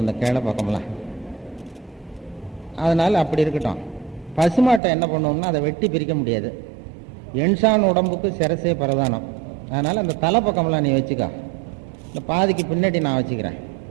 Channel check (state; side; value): drops out; left; at 4.8 s